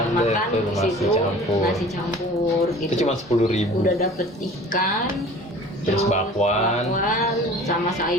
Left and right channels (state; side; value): normal; both; correlation 0.44